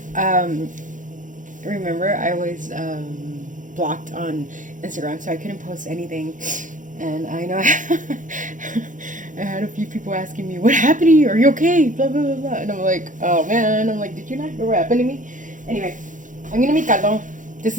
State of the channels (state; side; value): late; left; 0.37 ms